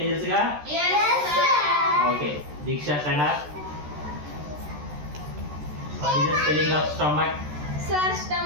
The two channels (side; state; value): left; late; 13 ms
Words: తెలుసుగా? Yes, sir. Okay, Deeksha stand up. What is the spelling of stomach? Sir